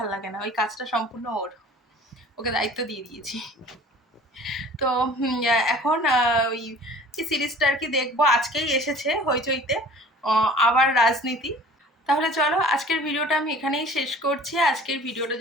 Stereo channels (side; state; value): both; normal; correlation 0.46